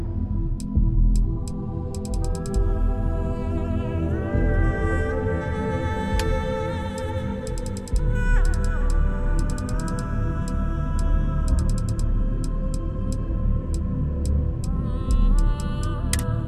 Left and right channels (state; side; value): identical; both; correlation 1.00